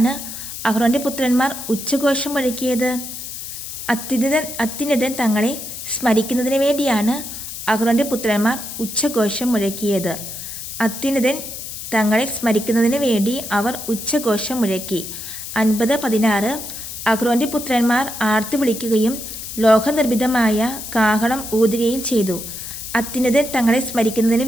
അഹ്റോന്റെ പുത്രന്മാർ ഉച്ചഘോഷം മുഴക്കിയത്? അത്യുന്നതൻ തങ്ങളെ സ്മരിക്കുന്നതിന് വേണ്ടിയാണ് അഹ്റോന്റെ പുത്രന്മാർ ഉച്ചഘോഷം മുഴക്കിയത്. അത്യുന്നതൻ തങ്ങളെ സ്മരിക്കുന്നതിന് വേണ്ടി അവർ ഉച്ചഘോഷം മുഴക്കി. 50:16 അഹ്റോന്റെ പുത്രന്മാർ ആർത്തു വിളിക്കുകയും ലോഹനിർമ്മിതമായ കാഹളം ഊതുകയും ചെയ്തു. അത്യുന്നതൻ തങ്ങളെ സ്മരിക്കുന്നതിന്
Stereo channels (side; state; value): left; noise; hiss, 9 dB below the sound